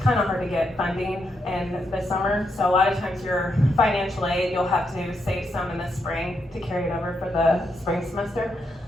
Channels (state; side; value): normal; both; correlation 0.80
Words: of hard to get funding in the summer. So a lot of times your financial aid, you'll have to save some in the spring to carry it over for the spring semester.